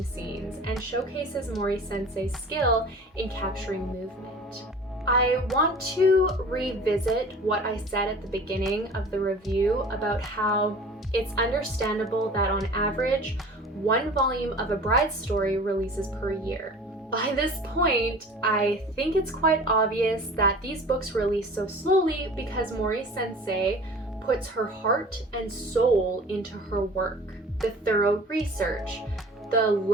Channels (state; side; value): normal; both; correlation 0.42